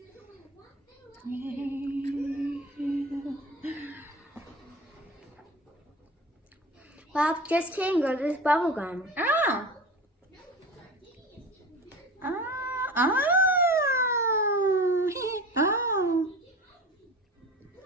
Well, just kidding, girl. This is bubble gum. Oh. Oh. Oh. Oh.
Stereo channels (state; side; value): normal; both; correlation 0.35